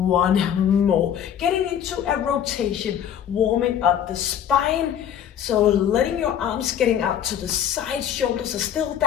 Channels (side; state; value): right; quieter; 9.5 dB